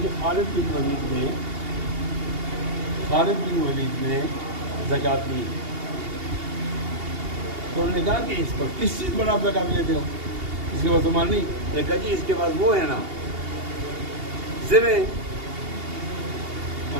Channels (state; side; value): late; left; 2.8 ms